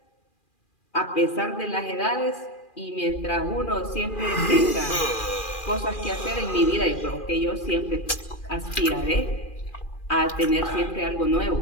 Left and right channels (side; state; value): right; late; 2.4 ms